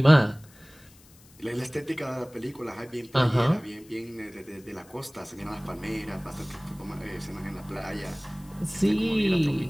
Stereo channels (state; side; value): noise; left; hiss, 26 dB below the sound